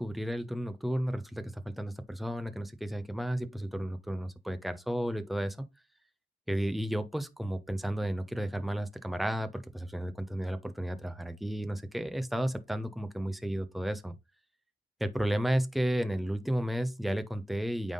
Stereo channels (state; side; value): normal; both; correlation 0.97